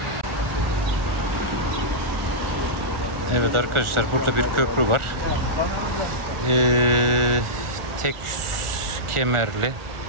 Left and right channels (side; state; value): left; late; 1.4 ms